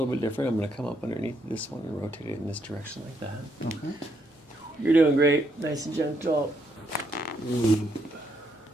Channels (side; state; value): both; normal; correlation 0.75